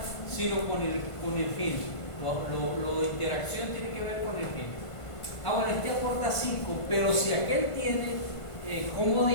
sino con el gen. Lo de interacción tiene que ver con el gen. Bueno, este aporta 5, pero si aquel tiene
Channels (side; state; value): right; late; 1.5 ms